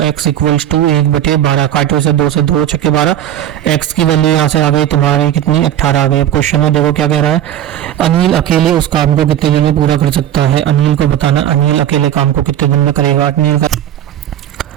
इक्वल्स टू 1/12। काटो से 2 से 2 छक्के 12। x की वैल्यू यहाँ से आ गई तुम्हारी कितनी? 18 आ गई। अब क्वेश्चन में देखो क्या कह रहा है। अनिल अकेले उस काम को कितने दिन में पूरा कर सकता है? अनिल को बताना, अनिल अकेले काम को कितने दिन में करेगा। अनिल का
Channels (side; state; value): left; quieter; 11.3 dB